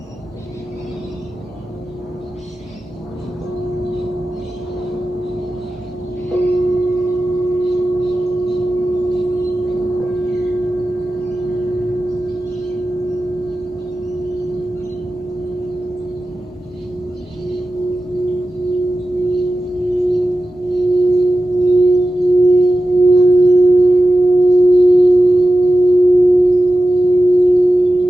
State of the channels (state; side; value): normal; both; correlation 0.93